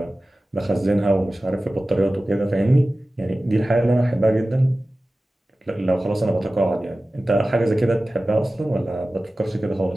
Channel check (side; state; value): both; normal; correlation 0.96